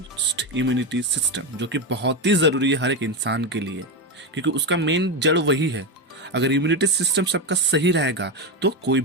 इम्यूनिटी सिस्टम, जो कि बहुत ही ज़रूरी है हर एक इंसान के लिए, क्योंकि उसका मेन जड़ वही है। अगर इम्यूनिटी सिस्टम सबका सही रहेगा तो कोई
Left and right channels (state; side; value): normal; both; correlation 0.11